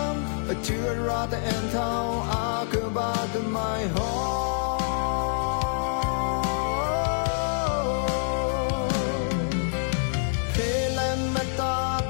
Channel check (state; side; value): silent; right; 61 dB below the other